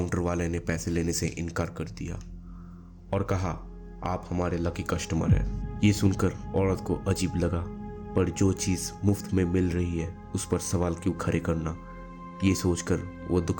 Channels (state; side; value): identical; both; correlation 1.00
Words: वाले ने पैसे लेने से इनकार कर दिया और कहा, आप हमारे लकी कस्टमर हैं। ये सुनकर औरत को अजीब लगा, पर जो चीज़ मुफ्त में मिल रही है उस पर सवाल क्यों खड़े करना, ये सोचकर वो